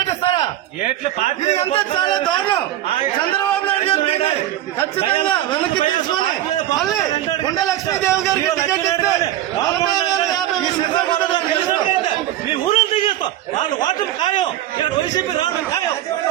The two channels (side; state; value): left; quieter; 13.1 dB